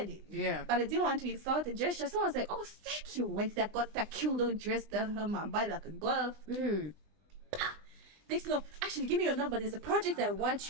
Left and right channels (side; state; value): left; late; 20 ms